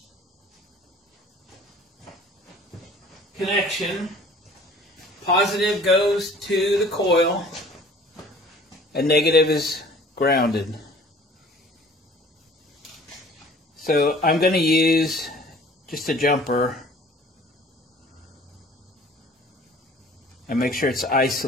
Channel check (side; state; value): both; normal; correlation 0.49